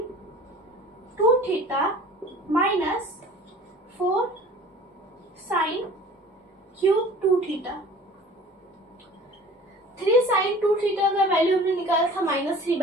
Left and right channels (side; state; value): both; normal; correlation 0.45